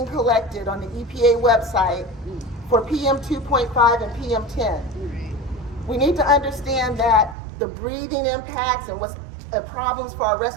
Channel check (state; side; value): drops out; left; at 7.4 s